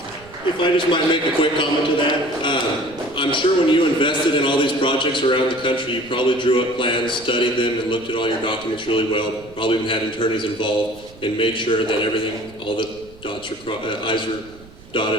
I just might make a quick comment to that, I'm sure when you invested in all these projects around the country, you probably drew up plans, studied them, and looked at all your documents really well. Probably even had attorneys involved and made sure that everything, all the I's are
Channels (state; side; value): noise; right; rumble, 22 dB below the sound